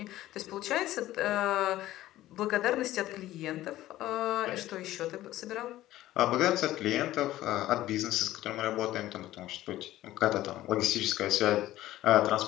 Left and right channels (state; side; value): quieter; right; 15.0 dB